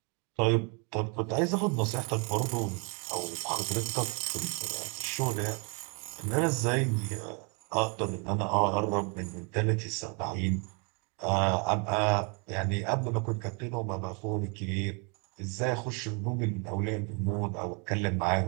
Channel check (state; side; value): quieter; left; 34.3 dB